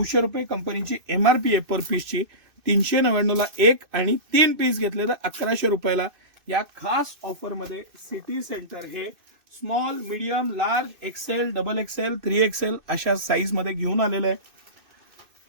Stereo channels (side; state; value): left; late; 2.6 ms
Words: रुपये कंपनीची MRP आहे पर पीसची. 399ला 1 आणि 3 पीस घेतले तर 1100 रुपयाला. या खास ऑफरमध्ये सिटी सेंटर हे small, medium, large, XL, double XL, 3XL अशा साईज मध्ये घेऊन आलेलं आहे.